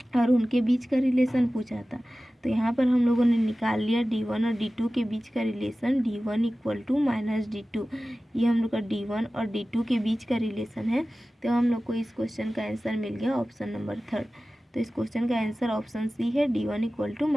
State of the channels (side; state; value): both; normal; correlation 0.96